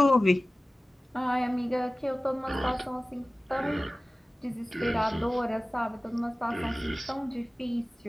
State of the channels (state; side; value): normal; both; correlation 0.97